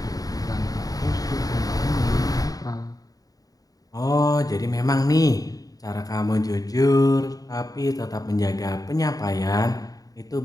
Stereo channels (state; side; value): late; right; 0.18 ms